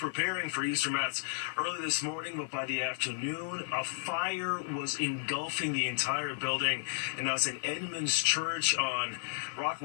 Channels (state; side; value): silent; right; digital silence